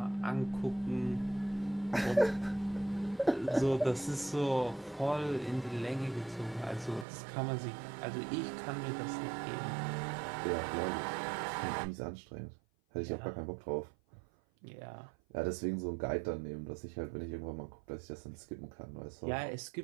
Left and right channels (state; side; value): drops out; left; at 7.1 s